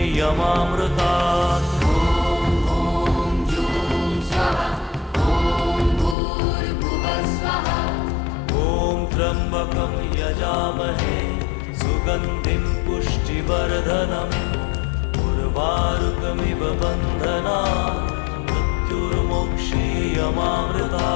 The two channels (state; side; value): drops out; right; at 6.2 s